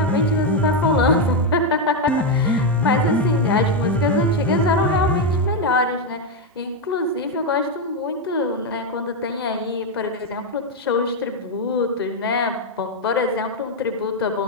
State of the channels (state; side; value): normal; both; correlation 0.04